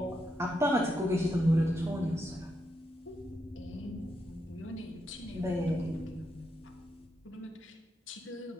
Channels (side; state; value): both; normal; correlation 0.82